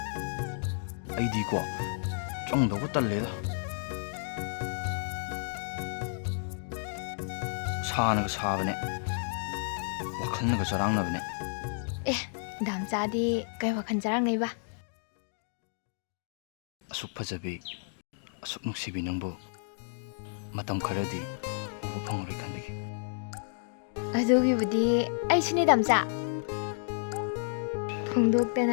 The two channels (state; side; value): silent; right; digital silence